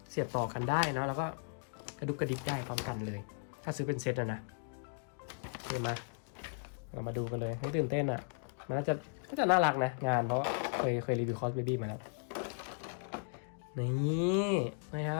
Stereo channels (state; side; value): silent; right; digital silence